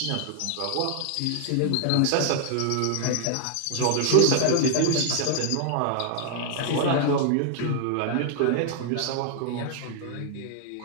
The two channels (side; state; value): both; different; correlation 0.00